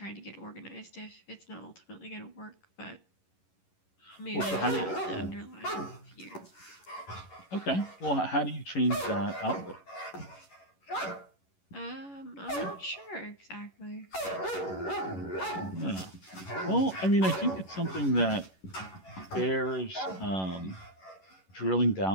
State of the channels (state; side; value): late; right; 11 ms